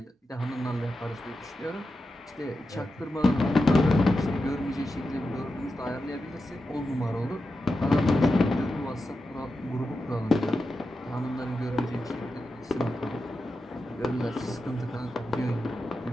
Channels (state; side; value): normal; both; correlation 0.90